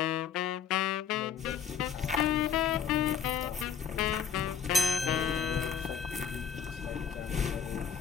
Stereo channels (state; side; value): quieter; right; 7.4 dB